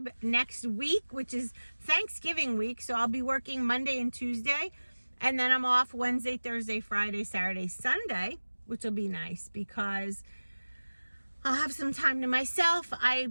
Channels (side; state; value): both; inverted; correlation -1.00